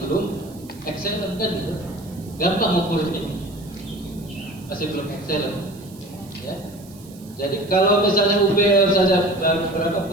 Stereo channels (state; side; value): noise; right; hiss, 23 dB below the sound